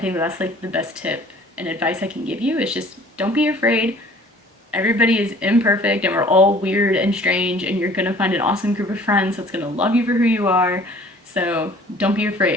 think that's like the best tip and advice I can give you is just don't be afraid. Everybody is imperfect and we're all weird and strange, and you're gonna find an awesome group of friends that's gonna love you for who you are. So don't be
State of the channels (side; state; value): both; normal; correlation 0.51